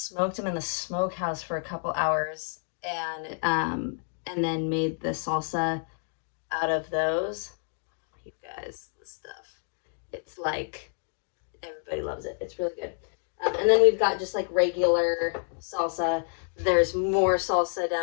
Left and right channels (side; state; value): right; silent; digital silence